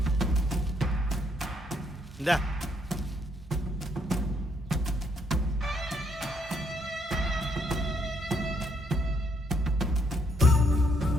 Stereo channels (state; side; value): normal; both; correlation 0.72